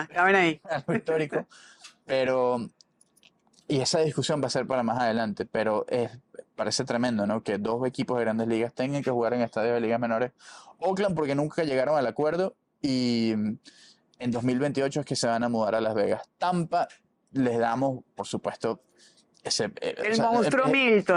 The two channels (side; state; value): both; identical; correlation 1.00